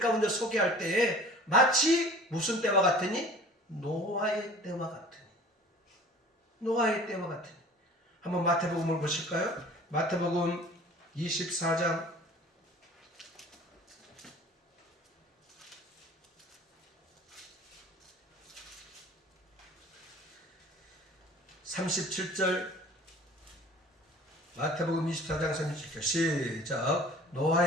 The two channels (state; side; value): normal; both; correlation 0.46